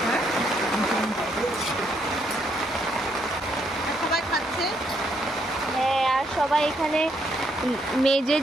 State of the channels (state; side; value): normal; both; correlation 0.74